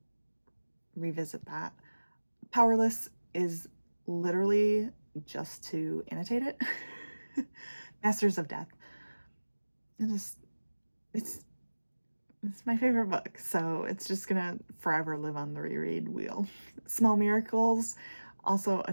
revisit that. Powerless is literally just to annotate it. Masters of Death. It's my favorite book, so it's just gonna forever live on the reread wheel. Small Miracles, also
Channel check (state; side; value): inverted; both; correlation -1.00